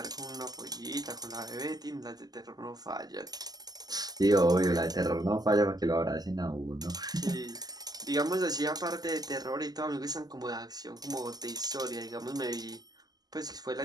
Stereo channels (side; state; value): left; late; 0.19 ms